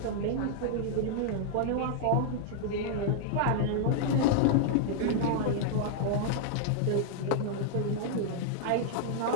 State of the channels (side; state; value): both; different; correlation -0.01